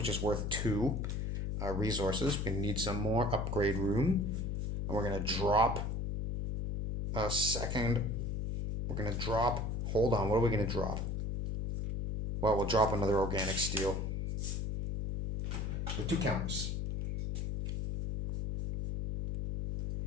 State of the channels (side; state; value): left; noise; hum, 1 dB below the sound